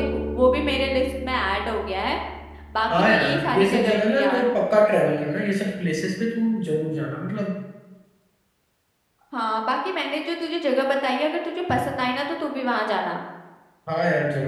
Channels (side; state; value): both; identical; correlation 1.00